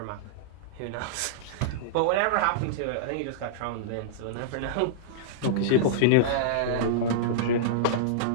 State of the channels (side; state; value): both; different; correlation -0.02